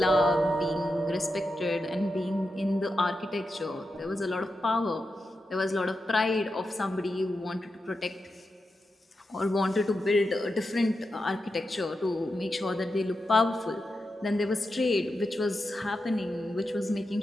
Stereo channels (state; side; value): normal; both; correlation 0.89